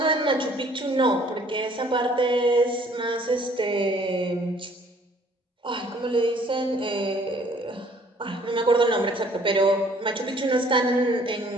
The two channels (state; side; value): normal; both; correlation 0.58